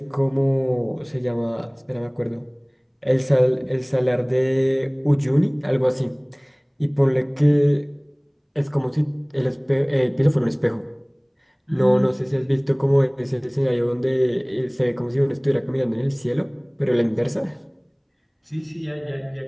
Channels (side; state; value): both; identical; correlation 1.00